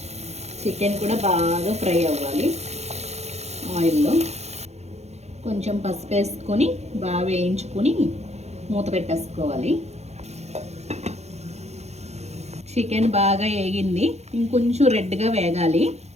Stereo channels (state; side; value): late; left; 0.31 ms